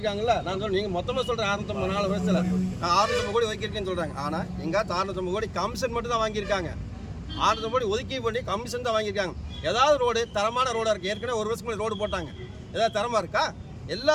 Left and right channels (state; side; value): identical; both; correlation 1.00